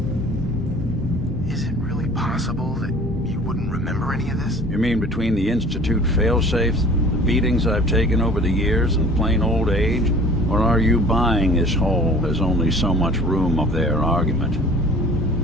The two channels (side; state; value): both; normal; correlation 0.47